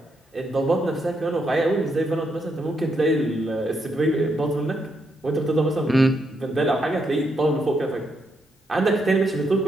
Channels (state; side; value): normal; both; correlation 0.79